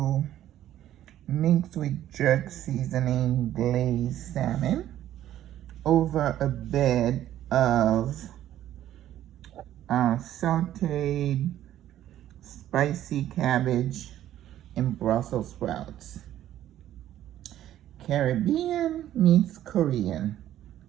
mixed with jerk seasoning glazed salmon over a bed of sauteed spicy cabbage and Brussels sprouts. Caribbean meets Korean,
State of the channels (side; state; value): left; quieter; 12.3 dB